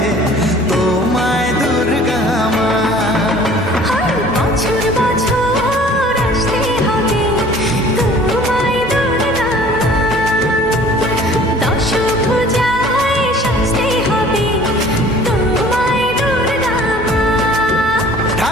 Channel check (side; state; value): both; normal; correlation 0.50